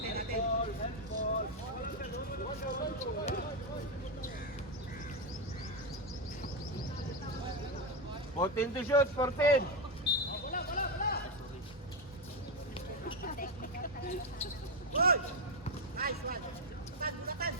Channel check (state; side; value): normal; both; correlation 0.08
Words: Fourteen to shoot, 14.